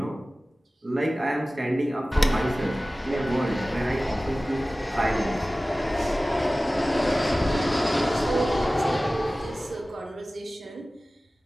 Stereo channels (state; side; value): normal; both; correlation 0.97